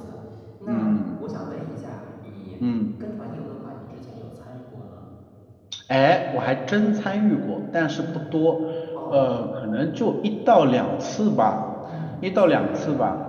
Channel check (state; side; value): identical; both; correlation 1.00